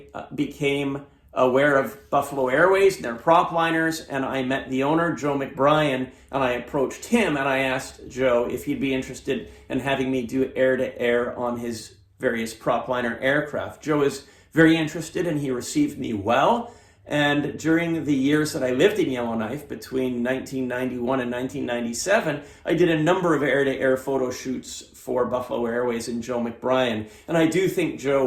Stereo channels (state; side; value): identical; both; correlation 1.00